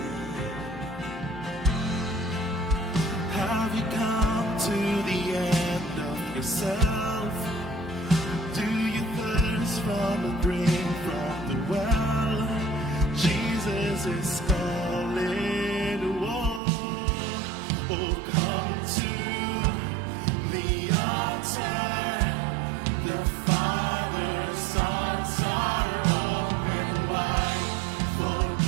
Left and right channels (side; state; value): left; drops out; at 16.6 s